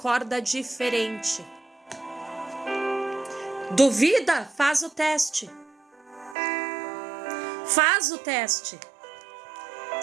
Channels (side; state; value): left; drops out; at 6.4 s